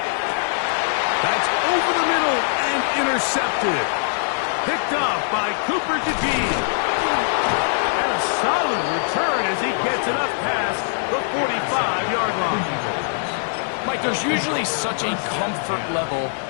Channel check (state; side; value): silent; right; digital silence